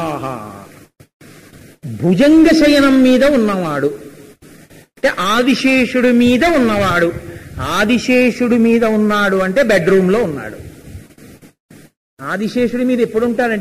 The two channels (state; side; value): identical; both; correlation 1.00